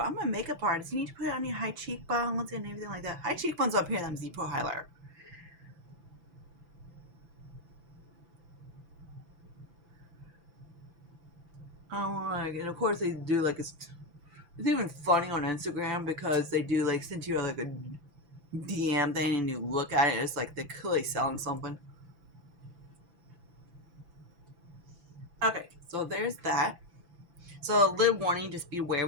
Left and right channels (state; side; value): late; left; 5.9 ms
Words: I'm a makeup artist. You need to put it on your high cheekbones and everything like that. High cheekbones up here, them Z-Pro highlighter. And of course they do like it's even funny on Instagram because they do like send you like a DM thing and you look at it, it's like they're clearly selling something. Okay, so there's that. So a little warning, just be aware